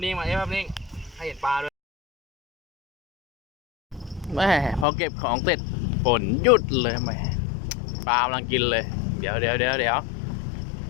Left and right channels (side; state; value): right; drops out; at 4.9 s